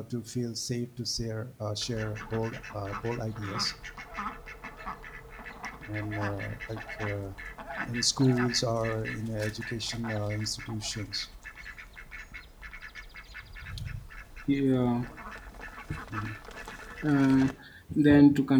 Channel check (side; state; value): both; identical; correlation 1.00